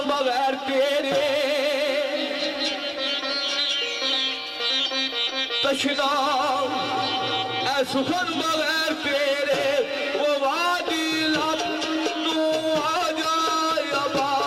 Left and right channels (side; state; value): both; identical; correlation 1.00